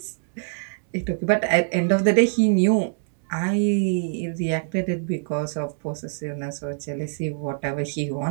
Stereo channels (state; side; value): silent; left; 63 dB below the other